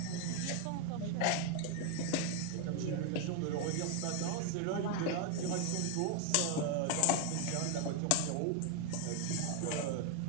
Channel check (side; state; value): both; different; correlation 0.01